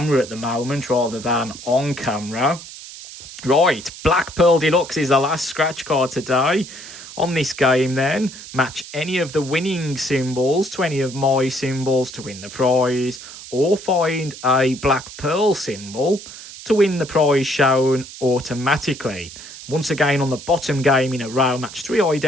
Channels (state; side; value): noise; right; hiss, 14 dB below the sound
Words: at the moment rather than on camera. Right, Black Pearl Deluxe is the last scratch card today. On this game then, match any of the winning symbols to any of my symbols to win the prize, or find a Black Pearl symbol to win the prize shown automatically. Once again, on the bottom game in a row, match 3